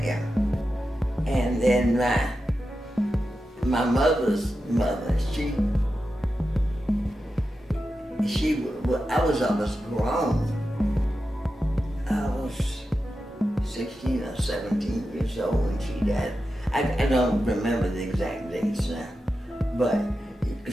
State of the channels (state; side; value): normal; both; correlation 0.91